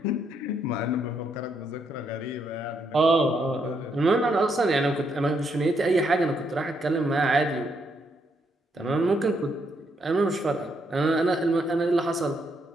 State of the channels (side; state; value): both; normal; correlation 0.76